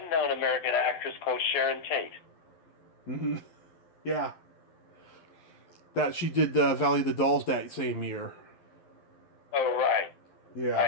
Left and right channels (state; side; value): late; right; 12 ms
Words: American actress called Sharon Tate. Mm-hmm. Yeah. That she did Valley of the Dolls that same year. Oh, right. Yeah.